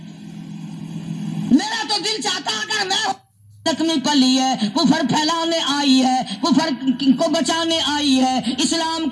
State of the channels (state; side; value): identical; both; correlation 1.00